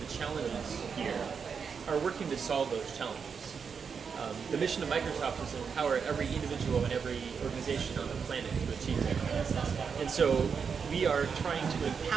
the challenges here, are working to solve those challenges. The mission of Microsoft is to empower every individual and every organization on the planet to achieve that. And so we are trying to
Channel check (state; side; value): quieter; left; 6.2 dB